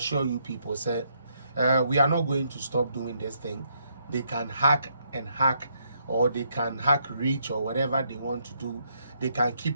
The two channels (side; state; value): both; inverted; correlation -0.74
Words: you people, say, we are not going to stop doing this thing. They can hack, or they can hack reach or whatever they want to do. They can